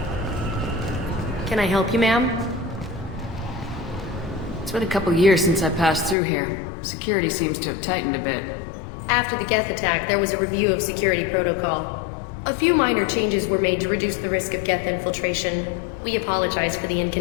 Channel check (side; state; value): right; drops out; at 6.2 s